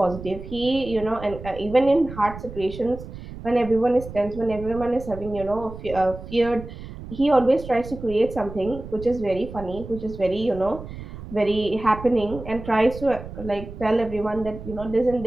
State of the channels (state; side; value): noise; right; rumble, 12 dB below the sound